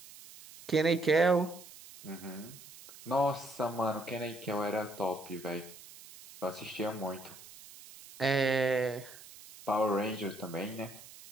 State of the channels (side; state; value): right; noise; hiss, 18 dB below the sound